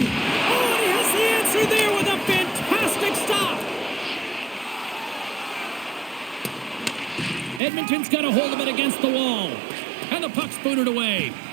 has the answer there with a fantastic stop. Edmonton's got a hold of it against the wall. And the puck's booted away.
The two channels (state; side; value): drops out; left; at 7.6 s